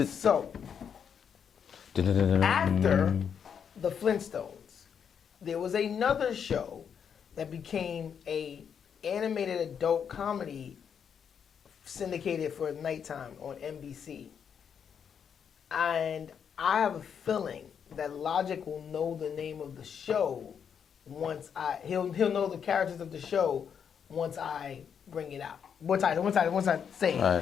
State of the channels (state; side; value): quieter; right; 7.5 dB